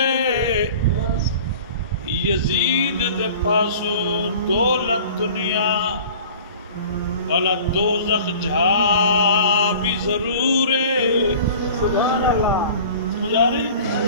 یزید دے پاسو دولت دنیا والا دوزخ جھا بھی ضرور ہے۔ سبحان اللہ، سمجھ آ رہی؟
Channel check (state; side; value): inverted; both; correlation -0.43